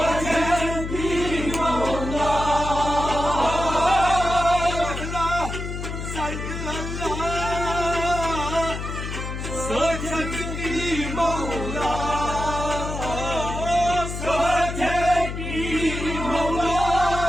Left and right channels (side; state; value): left; noise; hum, 6 dB below the sound